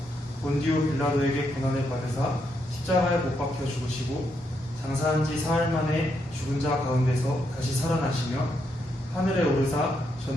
본디오 빌라도에게 고난을 받으사 십자가에 못 박혀 죽으시고 장사한 지 사흘 만에 죽은 자 가운데서 다시 살아나시며 하늘에 오르사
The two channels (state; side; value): normal; both; correlation 0.79